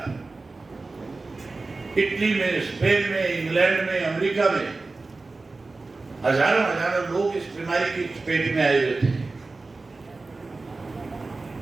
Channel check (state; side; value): quieter; left; 3.6 dB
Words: इटली में, स्पेन में, इंग्लैंड में, अमेरिका में हजारों हजारों लोग इस बीमारी की चपेट में आए हुए थे।